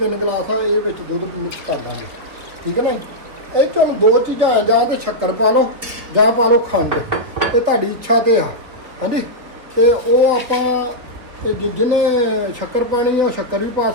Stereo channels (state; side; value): late; left; 4.1 ms